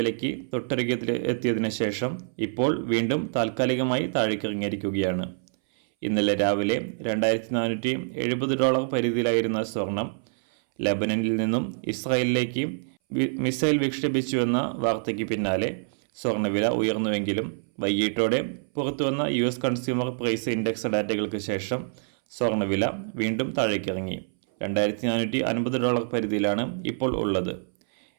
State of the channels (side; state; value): left; silent; 61 dB below the other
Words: വിലയ്ക്ക് തൊട്ടരികത്തിൽ എത്തിയതിനു ശേഷം ഇപ്പോൾ വീണ്ടും താൽക്കാലികമായി താഴേക്കിറങ്ങിയിരിക്കുകയാണ്. ഇന്നലെ രാവിലെ $2470 പരിധിയിലായിരുന്ന സ്വർണം ലെബനനിൽ നിന്നും ഇസ്രായേലിലേക്ക് മിസൈൽ വിക്ഷേപിച്ചുവെന്ന വാർത്തയ്ക്ക് പിന്നാലെ സ്വർണ്ണവില ഉയർന്നുവെങ്കിലും വൈകിട്ടോടെ പുറത്തുവന്ന US കൺസ്യൂമർ പ്രൈസ് ഇൻഡെക്സ് ഡാറ്റകൾക്ക് ശേഷം സ്വർണ്ണവില വീണ്ടും താഴേക്കിറങ്ങി. $2450 പരിധിയിലാണ് ഇപ്പോൾ ഉള്ളത്.